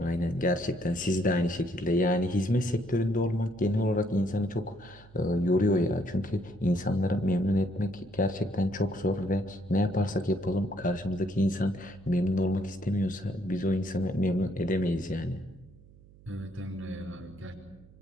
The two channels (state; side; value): noise; right; hum, 24 dB below the sound